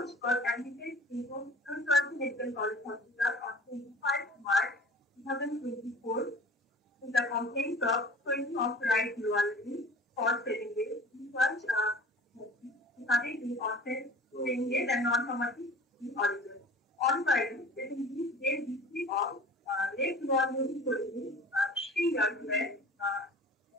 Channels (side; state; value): both; normal; correlation 0.43